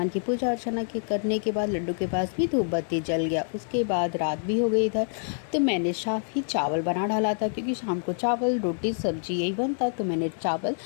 की पूजा अर्चना के करने के बाद लड्डू के पास भी धूप बत्ती जल गया। उसके बाद रात भी हो गई इधर, तो मैंने साफ ही चावल बना डाला था, क्योंकि शाम को चावल रोटी सब्जी यही बनता, तो मैंने चावल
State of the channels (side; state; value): right; silent; digital silence